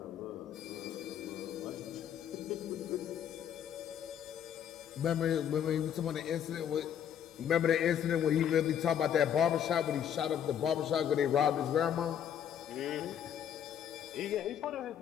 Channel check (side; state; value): right; quieter; 9.2 dB